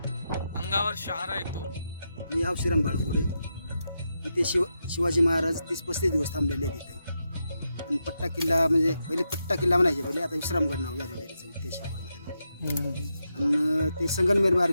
अंगावर शहारा येतो. मी श्रीराम बाळगुडे. इथे शिवाजी महाराज 30-35 दिवस थांबलेले आहेत इथे. आणि पट्टा किल्ला म्हणजे पहिले पट्टा किल्ला म्हणायचे, पहिले आता विश्रामगड नाव झालेलं आहे त्याचं, ते शिकवलं त्यांनी. आणि ते संगमनेर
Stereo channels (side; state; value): both; inverted; correlation -0.85